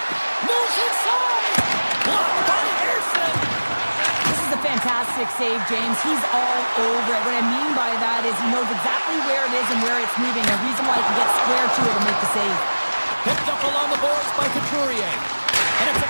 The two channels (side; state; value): both; inverted; correlation -1.00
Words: Moves inside. Blocked by Anderson. This is a fantastic save, James. He's all over it. What I mean by that is he knows exactly where it is and where it's moving. A reason why he can get square to it and make the save. Picked up along the boards by Couturier. And it's a